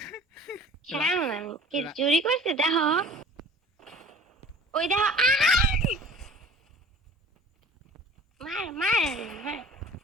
রা- কেমন আমি কি রা- চুরি করছে দেখো? ওই দেখো, মার মার মার।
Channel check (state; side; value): normal; both; correlation 0.46